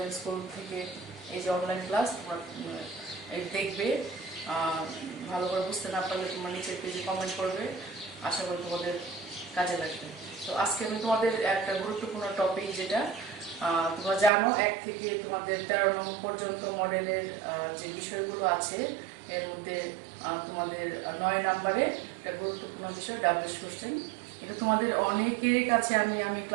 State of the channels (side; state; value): left; drops out; at 14.3 s